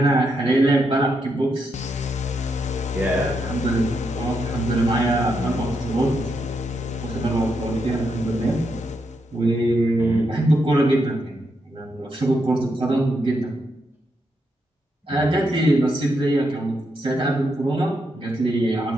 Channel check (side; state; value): both; normal; correlation 0.81